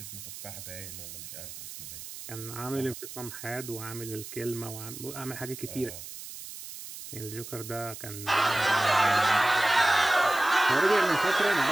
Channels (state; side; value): noise; right; hiss, 12 dB below the sound